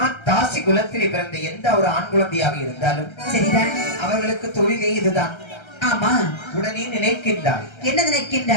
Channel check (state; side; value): late; right; 1.3 ms